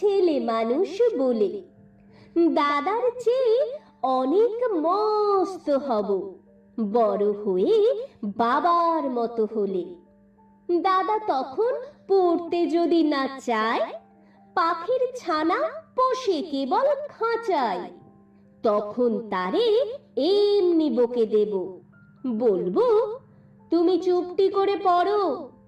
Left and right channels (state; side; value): identical; both; correlation 1.00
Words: মানুষ বলে। দাদার চেয়ে অনেক মস্ত হব বড় হয়ে বাবার মতো হলে। দাদা তখন পড়তে যদি না চায়, পাখির ছানা পোষে কেবল খাঁচায়, তখন তারে এমনি বকে দেব, বলবো তুমি চুপটি করে পড়ো,